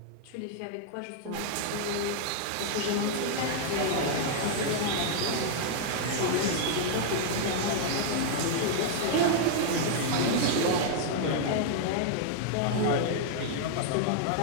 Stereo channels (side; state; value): both; different; correlation -0.01